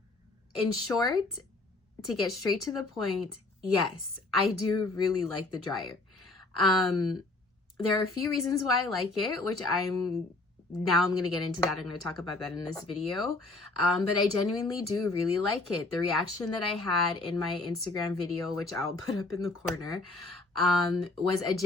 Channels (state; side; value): quieter; right; 3.1 dB